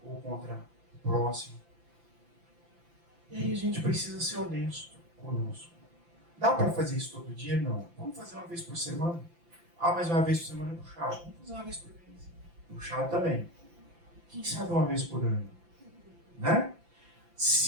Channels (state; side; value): late; left; 5.9 ms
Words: ou contra o próximo. E aí a gente precisa ser honesto conosco. Dá para fazer isso todo dia? Não. Vamos fazer uma vez por semana? Ah, mas uma vez por semana é puxado. Vamos fazer uma vez por mês. Puxado também. Quem sabe uma vez por ano? Né?